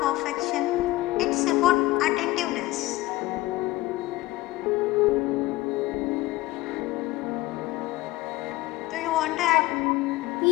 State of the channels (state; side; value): quieter; right; 18.5 dB